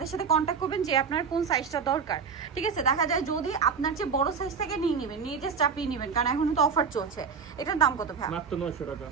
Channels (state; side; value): quieter; left; 5.9 dB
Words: সাথে কন্ট্যাক্ট করবেন যে আপনার কোন সাইজটা দরকার। ঠিক আছে, দেখা যায় যদি আপনার যে বড় সাইজ থেকে নিয়ে নেবেন, নিয়ে জাস্ট চাপিয়ে নেবেন, কারণ এখন তো অফার চলছে। এটার দাম কত ভাই? মাত্র 900 টাকা।